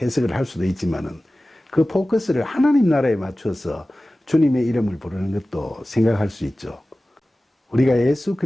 해석을 할 수도 있지만은 그 포커스를 하나님 나라에 맞춰서 주님의 이름을 부르는 것도 생각할 수 있죠. 우리가 예수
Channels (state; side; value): normal; both; correlation 0.96